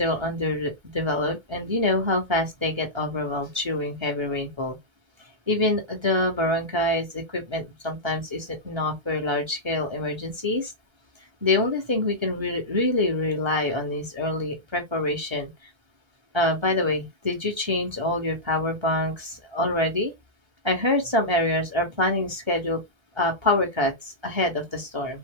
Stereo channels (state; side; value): late; left; 1.3 ms